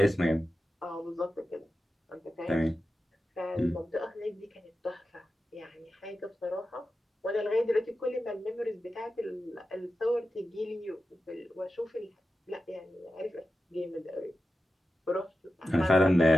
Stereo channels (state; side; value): normal; both; correlation 0.92